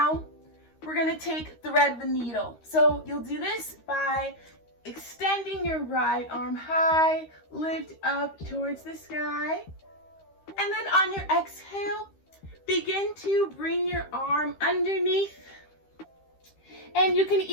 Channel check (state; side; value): late; right; 13 ms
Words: we're going to thread the needle. So you'll do this by extending your right arm high, lift up towards the sky. And then on your exhale, begin to bring your arm underneath. And you can